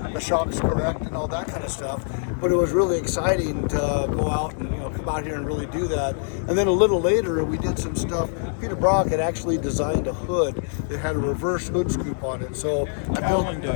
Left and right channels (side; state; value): right; silent; digital silence